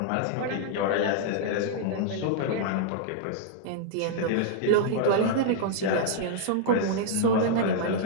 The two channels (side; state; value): both; different; correlation -0.01